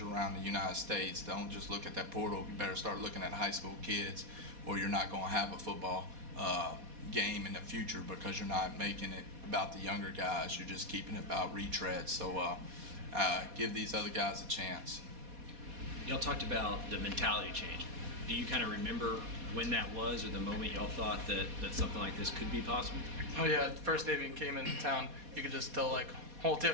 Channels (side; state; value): left; late; 4.2 ms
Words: the United States, don't just look at that portal. You better start looking at high school kids, or you're not going to have a football game in the future because you're not making it about the younger guys. You're just keeping it about retreads. So give these other guys a chance. Y'all talked about the mentality change. Do you kind of remember when that was, or the moment y'all thought that something like this could be possible? Oh yeah, the first day we came into town, you could just tell whole